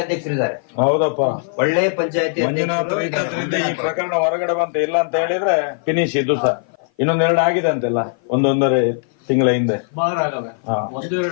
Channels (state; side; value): silent; right; 55 dB below the other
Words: ಅಧ್ಯಕ್ಷರಿದ್ದಾರೆ, ಹೌದಪ್ಪ. ಒಳ್ಳೆ ಪಂಚಾಯತಿ ಮಂಜುನಾಥ್ ಇದ್ದದ್ರಿಂದ ಈ ಪ್ರಕರಣ ಹೊರಗಡೆ ಬಂತ. ಇಲ್ಲ ಅಂತ ಹೇಳಿದ್ರೆ ಫಿನಿಶ್. ಇದು ಸಹ ಇನ್ನೊಂದೆರಡು ಆಗಿದೆ ಅಂತೆಲ್ಲ, ಒಂದೊಂದೂವರೆ ತಿಂಗಳ ಹಿಂದೆ. ಒಂದು